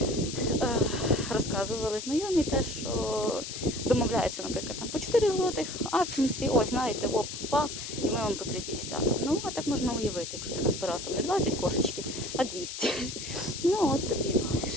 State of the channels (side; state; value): left; noise; hiss, 8 dB below the sound